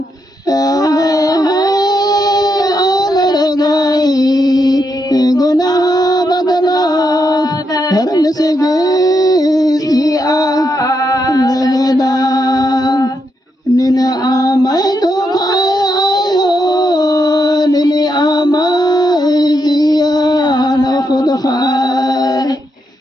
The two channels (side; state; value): both; normal; correlation 0.81